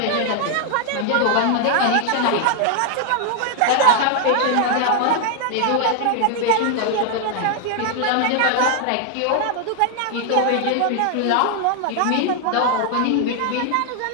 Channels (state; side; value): different; both; correlation 0.00